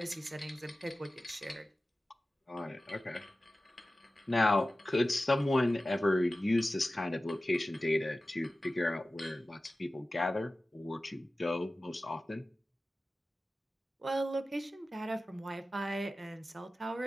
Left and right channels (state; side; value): normal; both; correlation 0.96